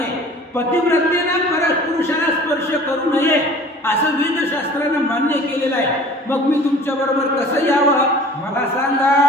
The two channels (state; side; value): normal; both; correlation 0.45